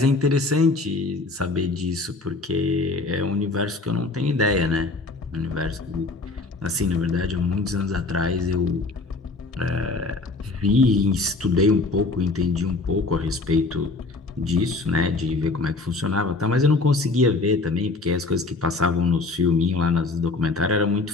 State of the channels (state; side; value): quieter; right; 3.5 dB